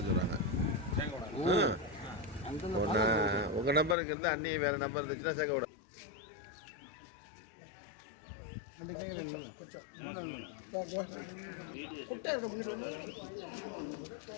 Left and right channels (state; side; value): drops out; right; at 4.0 s